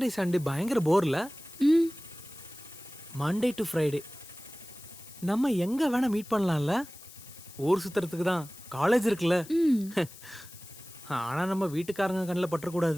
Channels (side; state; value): left; noise; hiss, 18 dB below the sound